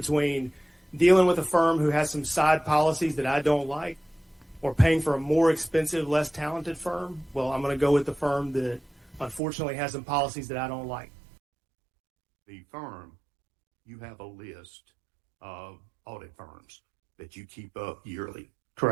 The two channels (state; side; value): drops out; left; at 9.4 s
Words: dealing with a firm who has some side policies that I don't like, or paying for a more expensive, less talented firm, well, I'm going to go with the firm that unfortunately has some policies that I don't like. The firm, you have a list of audit firms that you keep up yearly.